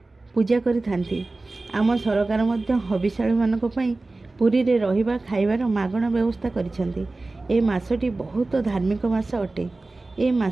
पूजा करिथांती। आम सरकार मध्य हविशाली मानक पई पुरी रे रहिबा खाइबार मागणा व्यवस्था करिसेंती। ए मासटी बहुत धार्मिक मास अटे। ए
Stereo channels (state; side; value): quieter; left; 3.2 dB